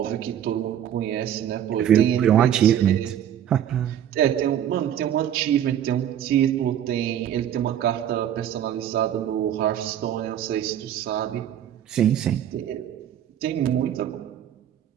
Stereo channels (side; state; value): left; quieter; 10.4 dB